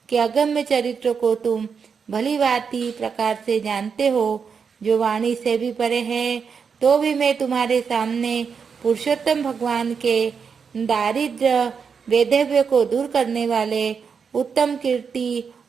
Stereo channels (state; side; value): quieter; left; 6.1 dB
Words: के अगम्य चरित्र को तुम भली भांति प्रकार से जानते हो, जो वाणी से भी परे है। तो भी मैं तुम्हारे सामने पुरुषोत्तम भगवान के दारिद्र्य वैधव्य को दूर करने वाले उत्तम कीर्ति